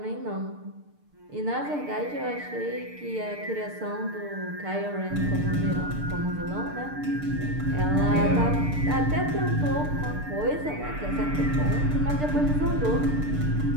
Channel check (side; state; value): left; late; 6.7 ms